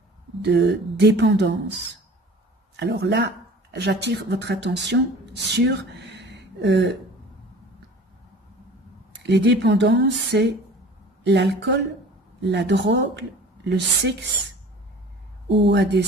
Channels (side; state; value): both; normal; correlation 0.44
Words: dépendance. Alors là, j'attire votre attention sur les dépendances, c'est l'alcool, la drogue, le sexe ou à des